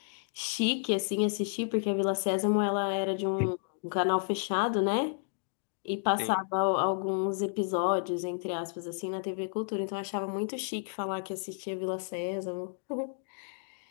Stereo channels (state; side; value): silent; right; digital silence